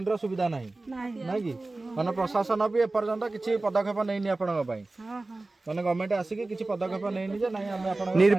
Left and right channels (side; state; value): left; quieter; 3.1 dB